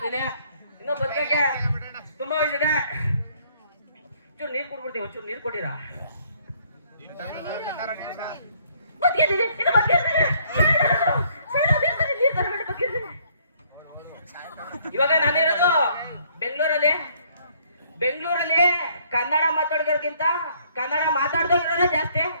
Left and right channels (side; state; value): both; inverted; correlation -0.64